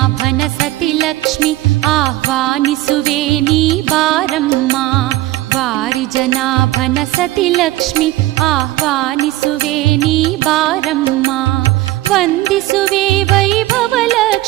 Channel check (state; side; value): quieter; left; 16.9 dB